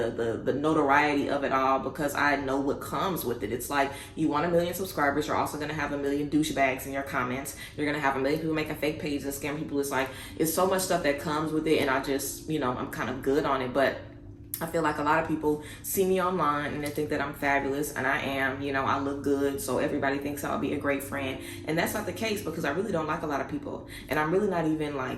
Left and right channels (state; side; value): identical; both; correlation 1.00